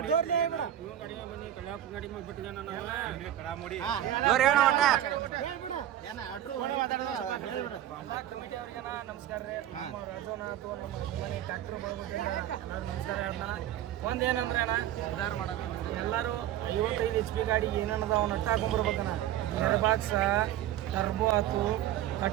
ನಮಸ್ಕಾರ ರೀ ನಮ್ಮ ರಾಜೋನಾಥ್ ನಮ್ಮ ಮನೆ ಟ್ಯಾಕ್ಟರ್ ಬಳಗೋದ್ರಿಂದ ನಮಸ್ಕಾರ ಅಣ್ಣ. ಒಂದೇನಂದ್ರೆ ಅಣ್ಣ ಎಲ್ಲರೂ 55 HP ಗಾಡಿ ಏನೇನದ ಅವ್ನ ಅಟ್ಟ ಹಾಕೊಂಡ್ಬರ್ಬೇಕಣ್ಣ. ಏರ್ ಬಾಕ್ಸ ಟರ್ಬೋ ಆತು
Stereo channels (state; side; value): quieter; left; 12.1 dB